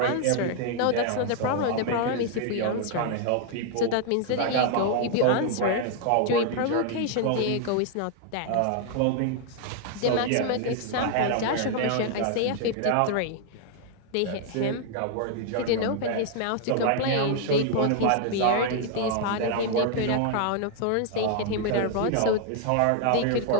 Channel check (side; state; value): both; different; correlation 0.00